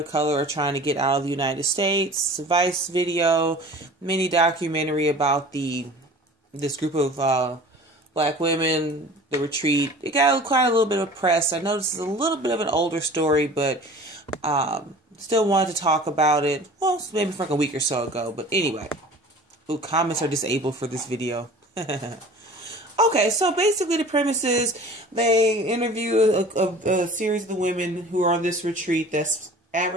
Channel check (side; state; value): both; normal; correlation 0.43